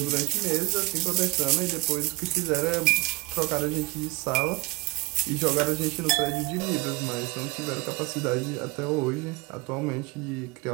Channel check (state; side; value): quieter; left; 23.5 dB